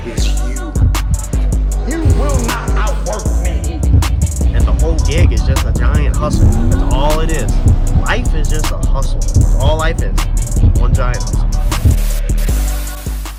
is you. You will not outwork me. And the whole gig is just a giant hustle. That's all it is. Life is just a hustle. That's all life is. One giant hustle.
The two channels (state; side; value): identical; both; correlation 1.00